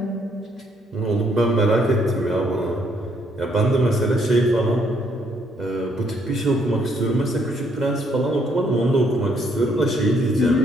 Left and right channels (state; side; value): normal; both; correlation 0.70